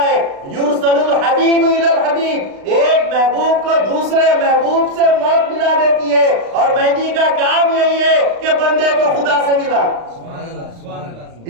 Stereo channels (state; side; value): late; left; 35 ms